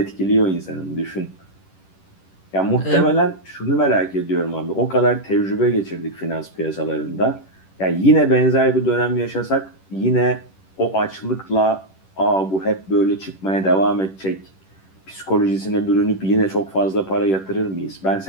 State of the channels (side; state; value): right; late; 10 ms